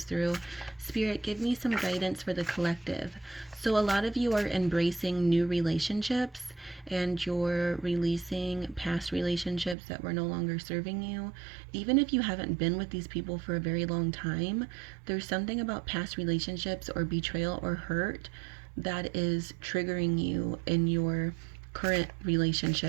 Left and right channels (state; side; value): drops out; left; at 9.8 s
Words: through. Spirit, give me some guidance for the collective. So a lot of you are embracing new relationships, and you're releasing past relationships that were no longer serving you. Even if you haven't been with these people for a very long time, there's something about past relationships or betrayal or hurt that is triggering you in your current